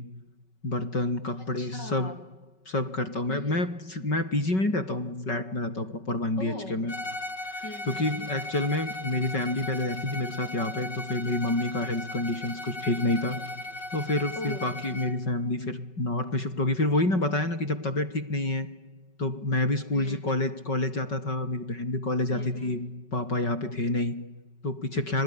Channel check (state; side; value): late; right; 5.3 ms